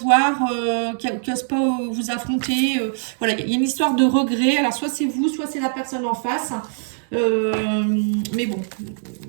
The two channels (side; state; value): left; silent; digital silence